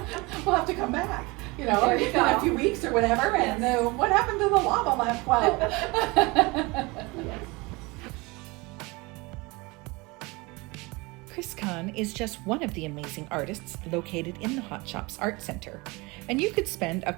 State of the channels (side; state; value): left; quieter; 24.8 dB